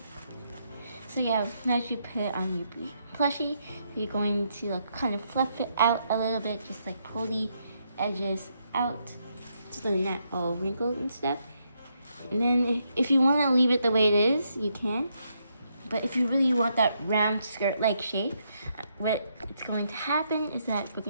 So yeah, once you put it on your plushie, you're going to kind of fluff it out a little bit, just like pull the edges out so they're not all wrinkled and stuff. And then if you want to leave it the way it is, you can. But if you really want that round skirt-like shape, what it's going to happen is that we're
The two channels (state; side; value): inverted; both; correlation -0.77